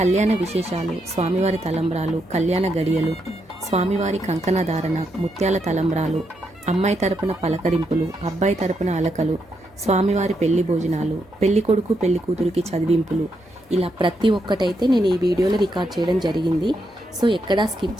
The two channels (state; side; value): normal; both; correlation 0.80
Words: విశేషాలు, స్వామివారి తలంబ్రాలు, కళ్యాణ గడియలు, స్వామివారి కంకణ ధారణ, ముత్యాల తలంబ్రాలు, అమ్మాయి తరపున పలకరింపులు, అబ్బాయి తరపున అలకలు, స్వామివారి పెళ్లి భోజనాలు, పెళ్లి కొడుకు పెళ్లి కూతురికి చదివింపులు, ఇలా ప్రతి ఒక్కటైతే నేను ఈ వీడియోలో రికార్డ్ చేయడం జరిగింది. సో ఎక్కడా స్కిప్